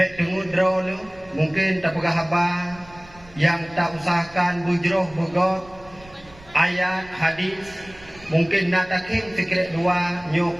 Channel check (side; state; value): right; noise; rumble, 23 dB below the sound